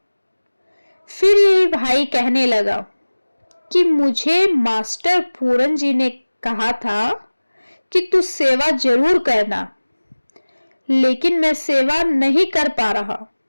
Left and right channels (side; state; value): both; inverted; correlation -1.00